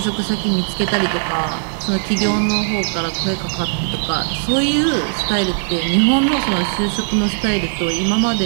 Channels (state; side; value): silent; left; digital silence